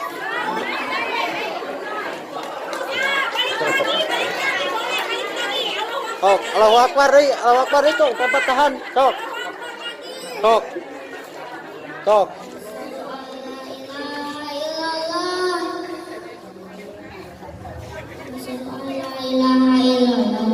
Sok, Allahu Akbar deui, Allahu Akbar deui cok, tempat tahan, sok. Sok. Sok.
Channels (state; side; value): identical; both; correlation 1.00